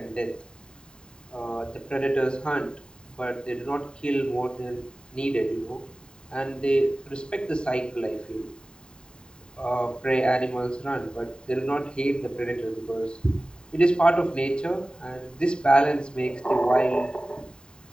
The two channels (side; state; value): right; late; 0.049 ms